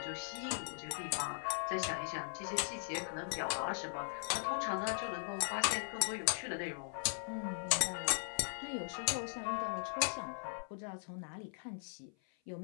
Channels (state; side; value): silent; right; 52 dB below the other